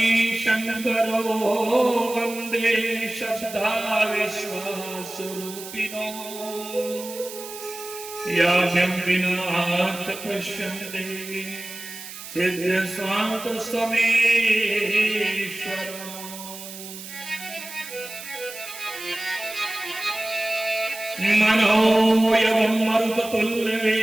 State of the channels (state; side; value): noise; right; hiss, 12 dB below the sound